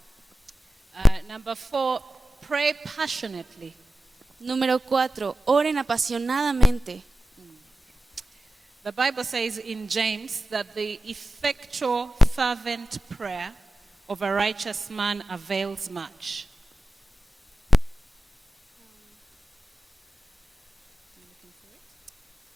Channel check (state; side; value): normal; both; correlation 0.95